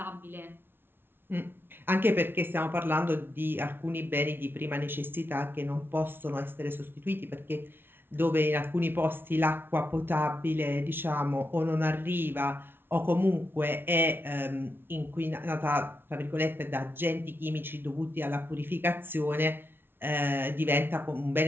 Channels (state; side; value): late; left; 0.11 ms